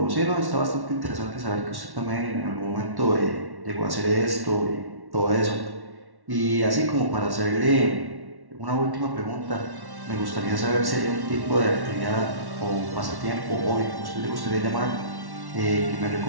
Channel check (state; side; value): late; left; 1.1 ms